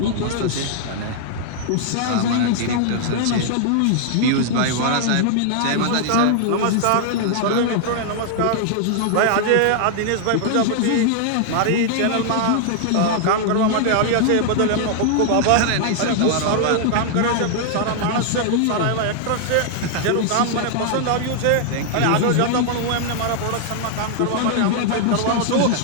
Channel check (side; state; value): both; different; correlation -0.01